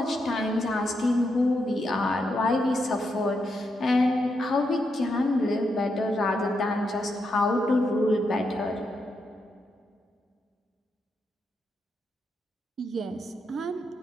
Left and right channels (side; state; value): both; normal; correlation 0.82